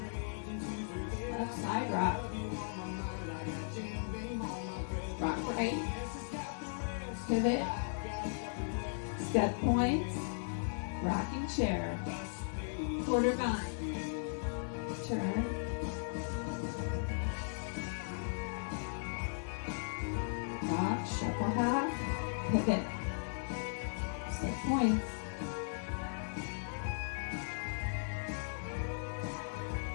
left side rock, rock right, pivot, step points, rocking chair, quarter vine, turn, rock, shuffle half, pivot, set points,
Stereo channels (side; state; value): right; silent; 53 dB below the other